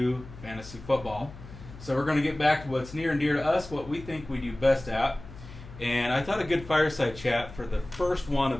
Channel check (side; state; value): left; noise; hum, 15 dB below the sound